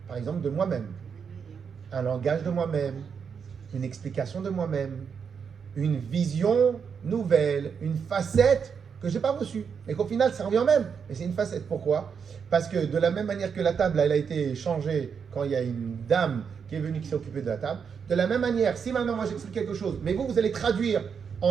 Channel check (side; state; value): left; quieter; 6.5 dB